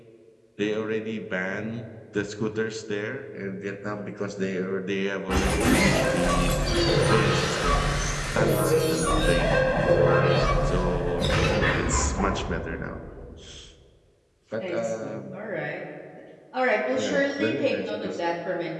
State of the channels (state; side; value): identical; both; correlation 1.00